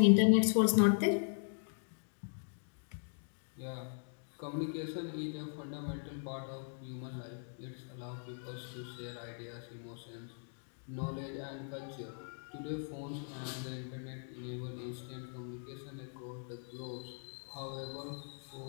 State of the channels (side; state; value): right; silent; digital silence